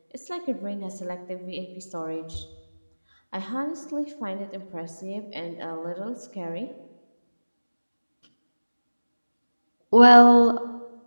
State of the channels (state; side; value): inverted; both; correlation -1.00